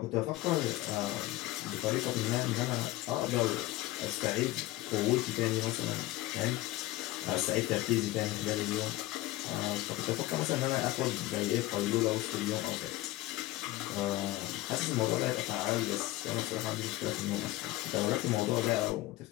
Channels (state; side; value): quieter; right; 17.5 dB